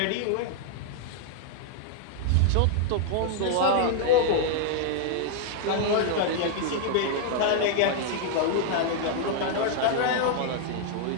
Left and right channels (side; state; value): both; different; correlation -0.01